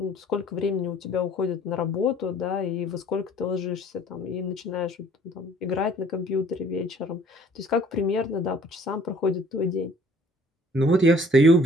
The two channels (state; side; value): normal; both; correlation 0.55